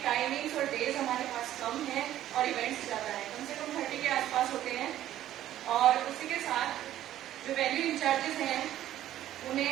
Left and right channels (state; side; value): quieter; left; 12.7 dB